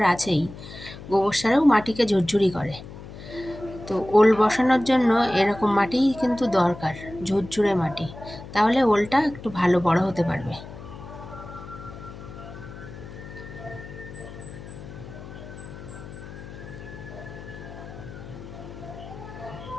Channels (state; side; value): noise; left; hum, 14 dB below the sound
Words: আছেই, গোবর সারেও মাটিকে ঝুরঝুরি করে। তো ওল বসানোর জন্য এরকম মাটিই কিন্তু দরকার, ঝুরঝুরে মাটি, তাহলে ওলটা একটু ভালো বড় হতে পারবে।